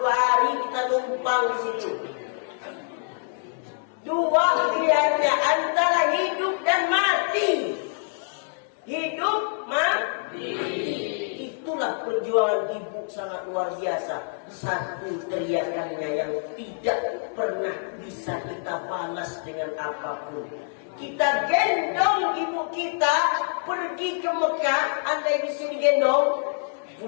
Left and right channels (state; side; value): silent; right; 61 dB below the other